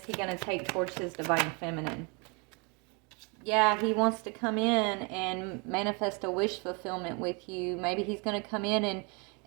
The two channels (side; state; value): left; quieter; 32.2 dB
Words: he going to take towards his Divine Feminine? Yeah, he wants to come in and manifest a wish fulfillment with you. Maybe he's going to come in